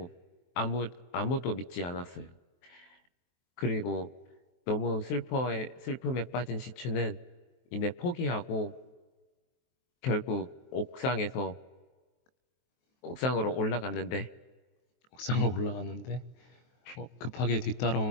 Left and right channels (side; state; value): right; late; 23 ms